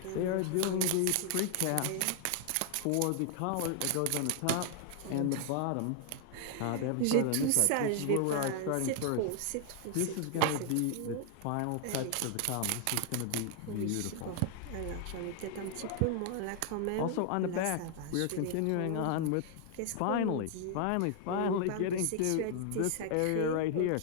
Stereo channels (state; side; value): different; both; correlation 0.00